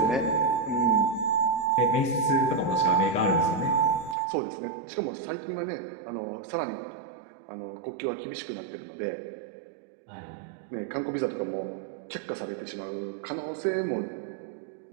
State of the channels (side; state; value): left; drops out; at 4.2 s